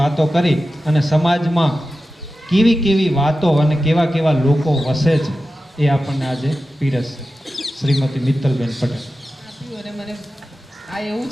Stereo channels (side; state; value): both; normal; correlation 0.93